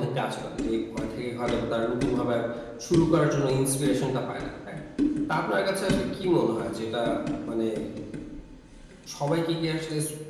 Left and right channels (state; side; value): identical; both; correlation 1.00